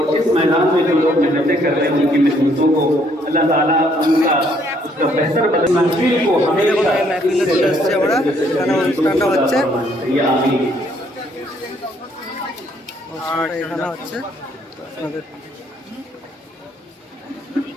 অনুষ্ঠানটা হচ্ছে এখানে হচ্ছে, আপনাদের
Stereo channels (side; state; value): both; normal; correlation 0.67